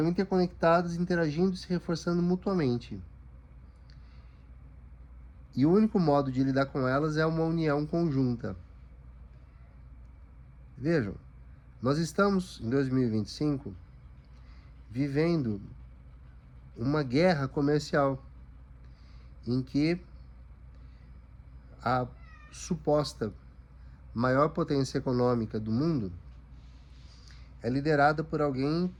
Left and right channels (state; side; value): identical; both; correlation 1.00